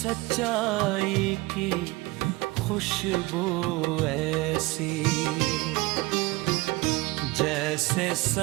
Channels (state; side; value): quieter; left; 21.8 dB